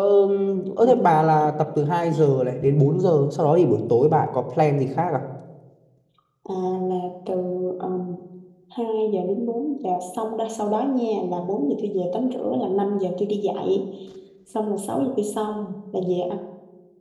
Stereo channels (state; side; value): identical; both; correlation 1.00